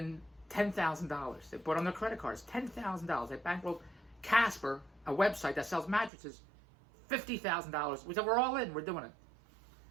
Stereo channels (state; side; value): drops out; left; at 6.1 s